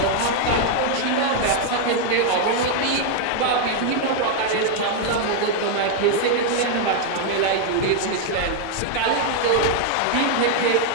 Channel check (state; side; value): different; both; correlation 0.00